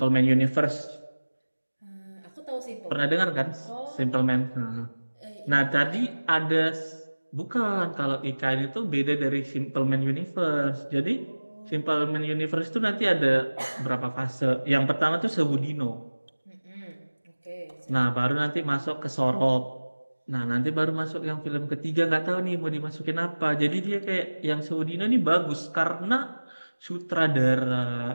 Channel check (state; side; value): inverted; both; correlation -1.00